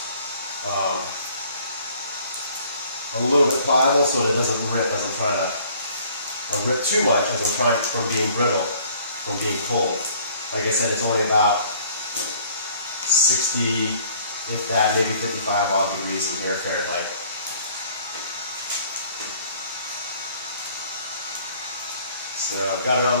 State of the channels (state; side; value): inverted; both; correlation -0.56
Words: a little bit pliable so that it doesn't rip as I'm trying to rip too much as I'm trying from being brittle, from being cold. Like I said, it's only about 60, if that, maybe 55 odd degrees in here Fahrenheit. So I've got it